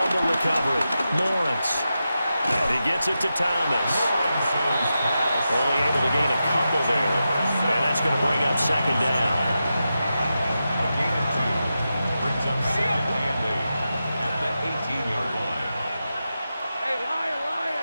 recovery, Lawrence. And he gets it to Thomas. Only able to gain a couple there. And that's going to bring up 2nd down. A gain of 2 brings up 2nd and 8 at the 18-yard line. Hey, Lion.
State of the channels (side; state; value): both; inverted; correlation -0.90